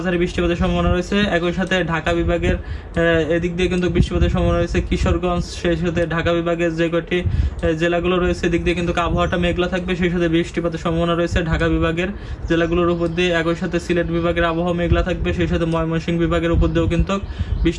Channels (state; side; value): identical; both; correlation 1.00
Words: বৃষ্টিপাতের সম্ভাবনা রয়েছে। একই সাথে ঢাকা বিভাগের এদিক দিয়ে কিন্তু বৃষ্টিপাতের সম্ভাবনা রয়েছে। কিশোরগঞ্জ, সেই সাথে ঢাকা বিভাগের যে কয়টি জেলাগুলো রয়েছে এদিক দিয়ে কিন্তু আবহাওয়াটা মেঘলা থাকবে, সেই সাথে বৃষ্টিপাতের সম্ভাবনা রয়েছে ঢাকা বিভাগের জেলাগুলোর উপর দিয়ে। একই সাথে সিলেট বিভাগের আবহাওয়া মেঘলা থাকবে, সেই সাথে ময়মনসিংহ বিভাগের উপর দিয়েও কিন্তু